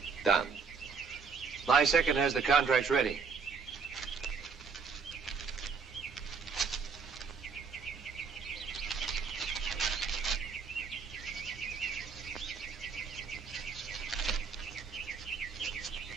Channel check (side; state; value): left; quieter; 5.5 dB